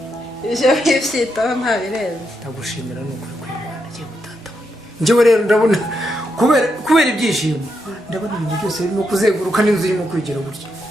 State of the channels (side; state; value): both; normal; correlation 0.82